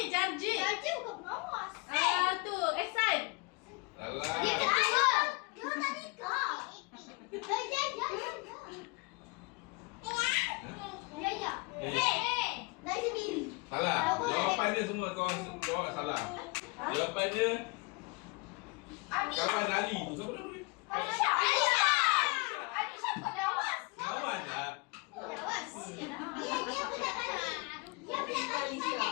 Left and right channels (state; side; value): quieter; right; 28.6 dB